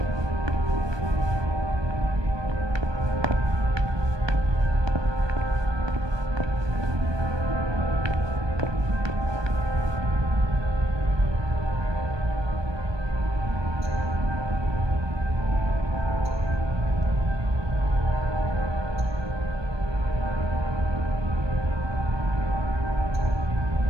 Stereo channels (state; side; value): late; left; 1.2 ms